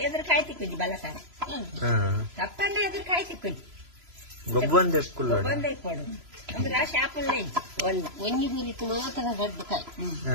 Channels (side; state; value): left; late; 3.0 ms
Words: ಎದುರು ಕಾಯಿ ತಿಕ್ಕುಜಿ ಬಲ ಸಾರ ಕಪ್ಪಂಡ ಎದುರು ಕಾಯಿ ತಿಕ್ಕುಜಿ ಗೊಬ್ಬೊಂದೆ ಕುಲ್ಲೋಡ ಗೊಬ್ಬೊಂದೇ ಕೊಡು ಅಂದ್ರೆ ಶಾಪಲ್ಲೇ ಇಜ್ಜಿ ಒಳ್ಳೆ ಒಂಜಿ ಗುರಿತು ಮಾತ್ರ ರಡ್ಡು ಕಾಯಿ